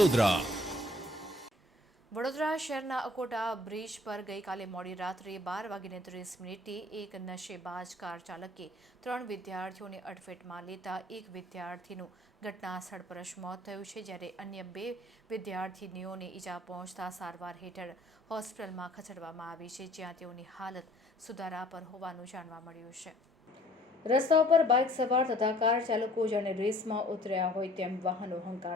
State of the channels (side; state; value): both; normal; correlation 0.56